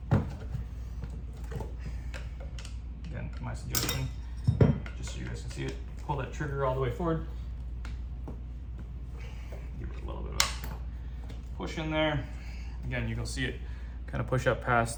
Again, my suggestion, just so you guys can see it, pull that trigger all the way forward. Give it a little bit of a push in there. Again, you can see it kind of push up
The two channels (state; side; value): identical; both; correlation 1.00